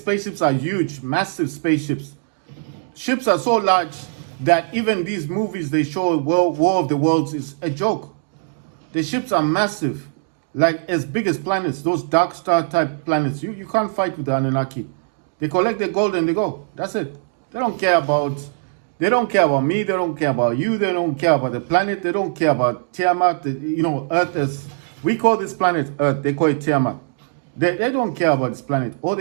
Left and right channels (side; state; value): left; silent; digital silence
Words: are huge, massive spaceships. Ships are so large that even these movies they show, War of the Worlds, is a joke. The ships are massive. Like as big as planets, those dark star type planets. You can't fight with the Anunnaki. They collect their gold and they go. That's it. They don't care about me, they don't care about you, they don't care about the planet, they don't care about Tiamat. Earth is, we call this planet Earth, they call it Tiamat. They don't care about this planet. All